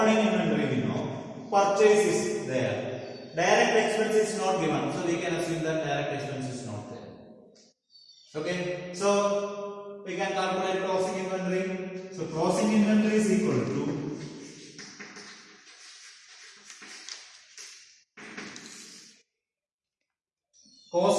inventory we know, purchase is there. Direct expense is not given, so we can assume that direct expense is not there. Okay, so we can calculate closing inventory. So closing inventory is equal to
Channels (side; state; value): both; identical; correlation 1.00